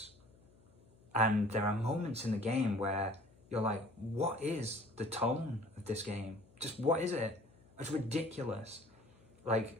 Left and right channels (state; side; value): noise; left; hum, 28 dB below the sound